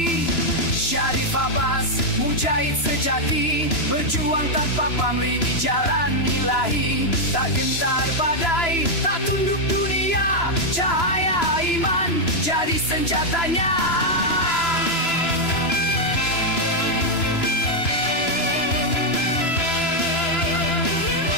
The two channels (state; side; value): late; right; 3.0 ms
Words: Syarif Abbas, mujahid sejati, berjuang tanpa pamrih di jalan ilahi. Tak gentar badai, tak tunduk dunia, cahaya iman jadi senjatanya.